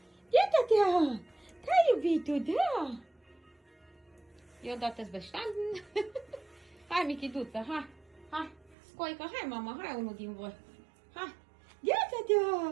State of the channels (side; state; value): left; drops out; at 8.8 s